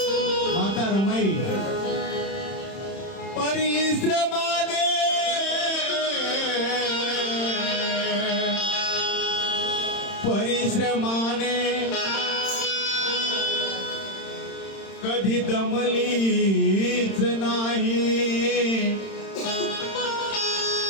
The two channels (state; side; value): late; right; 31 ms